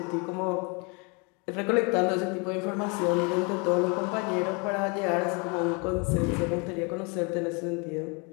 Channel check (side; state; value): right; quieter; 32.2 dB